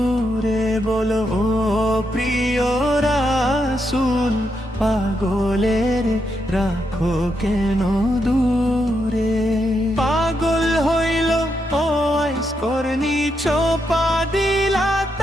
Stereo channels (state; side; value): normal; both; correlation 0.81